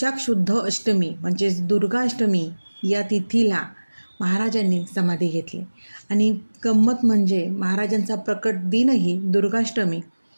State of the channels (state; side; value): inverted; both; correlation -1.00